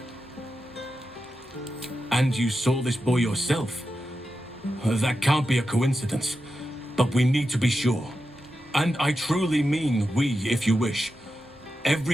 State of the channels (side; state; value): both; normal; correlation 0.90